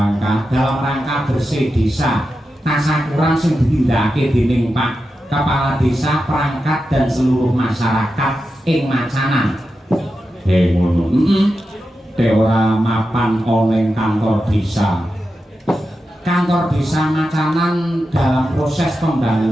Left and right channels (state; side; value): normal; both; correlation 0.90